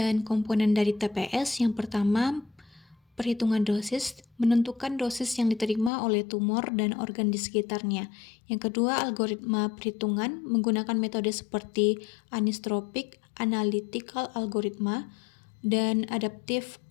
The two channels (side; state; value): right; drops out; at 5.9 s